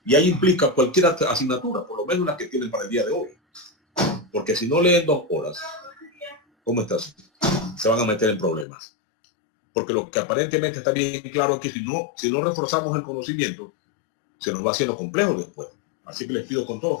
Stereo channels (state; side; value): drops out; right; at 8.7 s